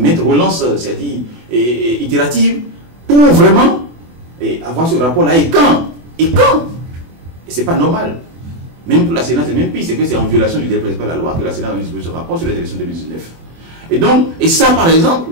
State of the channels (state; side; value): late; left; 24 ms